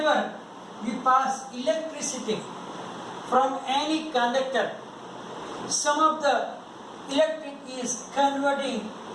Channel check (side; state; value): both; identical; correlation 1.00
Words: we pass electricity from any conductor, some of the electric is converting